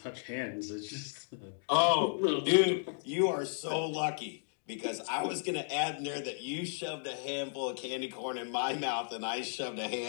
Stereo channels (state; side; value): silent; right; digital silence